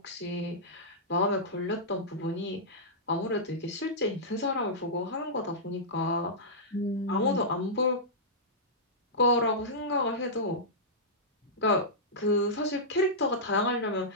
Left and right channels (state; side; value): normal; both; correlation -0.14